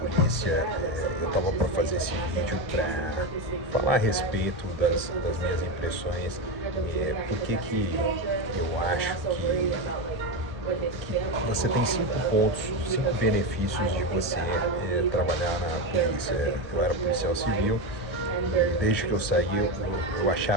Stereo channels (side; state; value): both; normal; correlation 0.15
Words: eu estava para fazer esse vídeo para falar a respeito das minhas impressões, por que eu acho que você tem 5 pontos, 5 benefícios de você trabalhar na polícia. Eu era policial civil e desde que eu saí eu